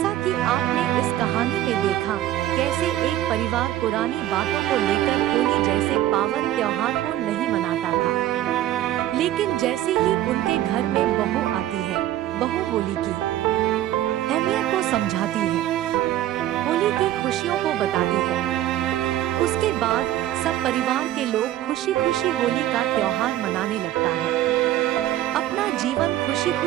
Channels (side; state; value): left; quieter; 13.3 dB